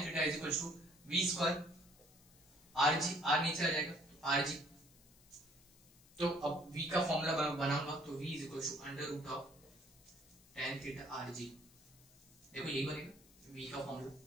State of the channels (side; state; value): left; noise; hiss, 26 dB below the sound